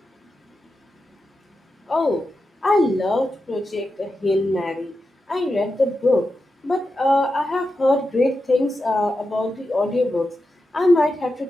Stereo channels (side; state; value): both; normal; correlation 0.89